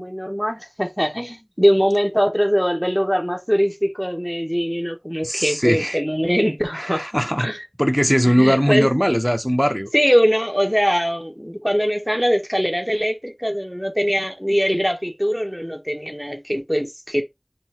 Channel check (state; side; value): identical; both; correlation 1.00